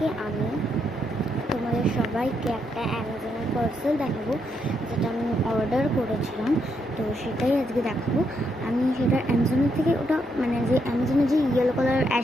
আমি তোমাদের সবাইকে একটা অ্যামাজনের পার্সেল দেখাবো, যেটা আমি অর্ডার করেছিলাম। তো সেটাই আজকে দেখাবো। আমি সেটা অ্যামাজনের থেকে ওটা যে অ্যামাজনের যে ইয়েলো কালার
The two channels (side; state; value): both; normal; correlation 0.78